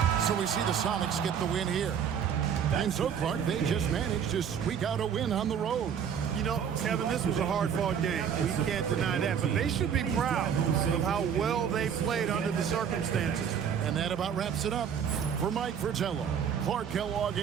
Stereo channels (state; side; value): quieter; left; 7.9 dB